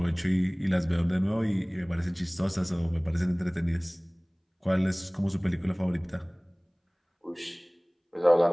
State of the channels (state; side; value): identical; both; correlation 1.00